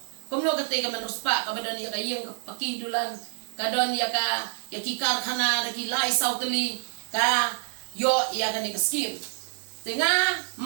kumno katay ka manruspa kabadon ya kayeng pakidulan kadon ya ka ya kikar khana daki lai sautali ka yo ya ka ni ka skim tinga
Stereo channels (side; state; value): left; silent; digital silence